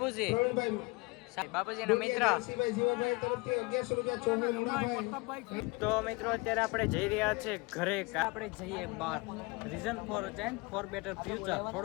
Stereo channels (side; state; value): right; quieter; 26.0 dB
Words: બાપુજીનો મિત્ર. તો મિત્રો અત્યારે આપણે જઈ રહ્યા છીએ ઘરે. આપણે જઈએ બહાર. Reason for better future.